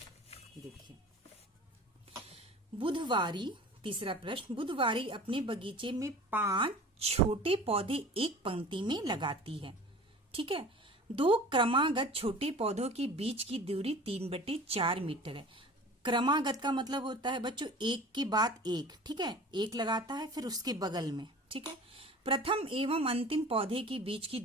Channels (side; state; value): both; normal; correlation 0.41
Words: देखिए बुधवारी, तीसरा प्रश्न, बुधवारी अपने बगीचे में 5 छोटे पौधे एक पंक्ति में लगाती है। ठीक है, 2 क्रमागत छोटे पौधों के बीच की दूरी 3/4 मीटर है। क्रमागत का मतलब होता है बच्चों एक के बाद एक। ठीक है, एक लगाता है फिर उसके बगल में। ठीक है, प्रथम एवं अंतिम पौधे के बीच की